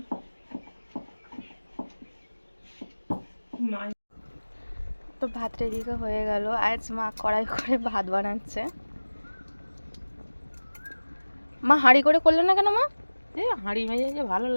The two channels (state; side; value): inverted; both; correlation -1.00